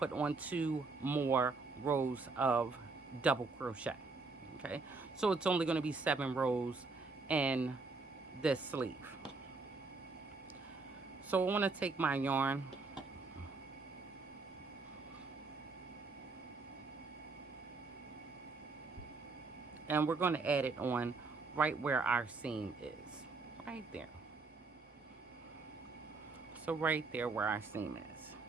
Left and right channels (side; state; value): left; quieter; 4.0 dB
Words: on 2 more rows of double crochet. Okay, so it's only going to be 7 rows in this sleeve. So I want to take my yarn, and we're going to add it on right where our seam is, right there. So right there where our seam is.